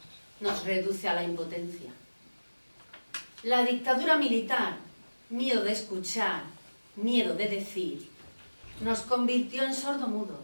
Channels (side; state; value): both; inverted; correlation -1.00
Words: nos reduce a la impotencia. La dictadura militar, miedo de escuchar, miedo de decir, nos convirtió en sordomudos.